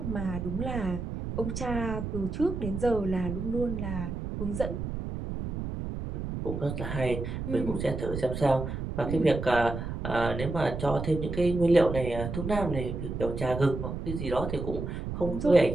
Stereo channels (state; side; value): noise; right; rumble, 5 dB below the sound